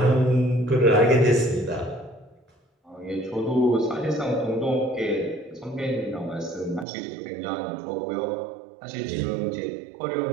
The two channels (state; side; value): drops out; left; at 6.9 s